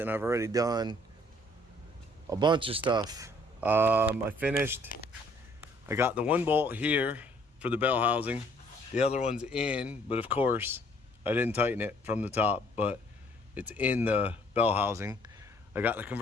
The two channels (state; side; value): normal; both; correlation 0.61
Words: I've already done a bunch of stuff. I finished. I got the one bolt here for the bell housing. The other one's in, but of course, I didn't tighten it from the top, but it's in the bell housing. I got the